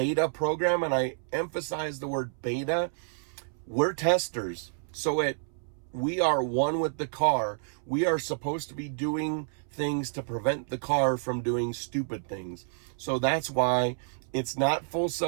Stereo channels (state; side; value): silent; left; 58 dB below the other